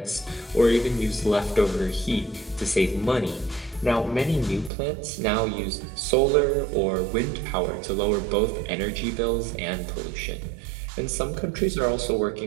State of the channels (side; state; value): left; drops out; at 4.7 s